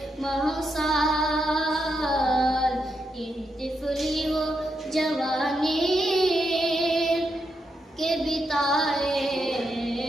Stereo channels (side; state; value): both; normal; correlation 0.82